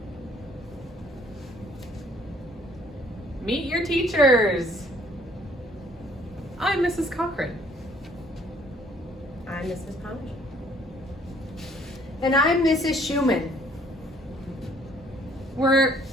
Meet your teachers. I'm Mrs. Cochran. I'm Mrs. Pouch. And I'm Mrs. Schumann. We're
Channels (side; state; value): both; normal; correlation 0.60